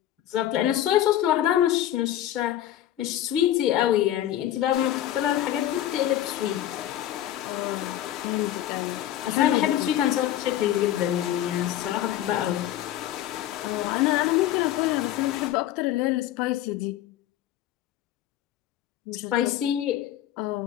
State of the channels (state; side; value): quieter; right; 12.5 dB